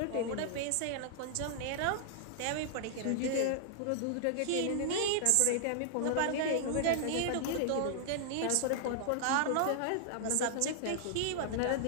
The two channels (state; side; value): different; both; correlation -0.01